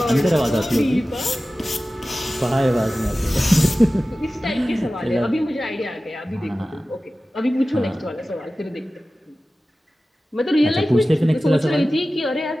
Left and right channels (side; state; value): both; normal; correlation 0.96